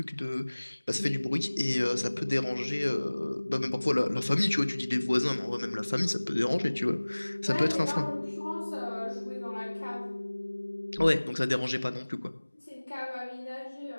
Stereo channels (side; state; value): both; inverted; correlation -1.00